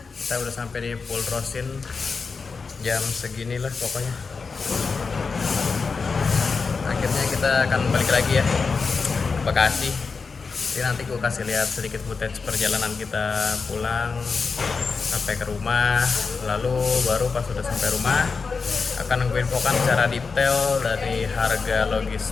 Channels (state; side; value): quieter; right; 4.8 dB